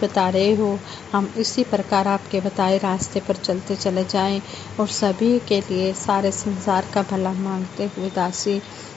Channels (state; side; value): quieter; right; 7.5 dB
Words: रहे हो, हम इसी प्रकार आपके बताए रास्ते पर चलते चले जाएं और सभी के लिए सारे संसार का भला मांगते हुए दासी